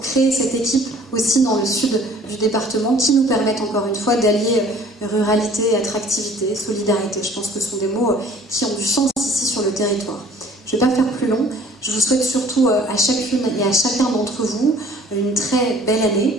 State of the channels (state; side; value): normal; both; correlation 0.53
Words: créer cette équipe aussi dans le sud du département qui nous permettent encore une fois d'allier ruralité, attractivité, solidarité. Je pense que ce sont des mots qui ont du sens ici sur le territoire. Je ne vais pas faire plus long. Je vous souhaite surtout à chacune et à chacun d'entre vous une très belle